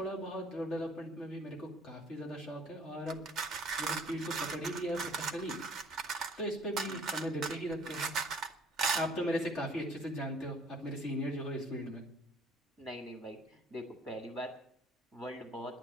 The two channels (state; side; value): normal; both; correlation 0.56